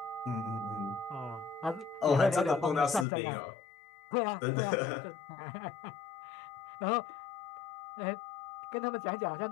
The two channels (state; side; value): drops out; right; at 3.1 s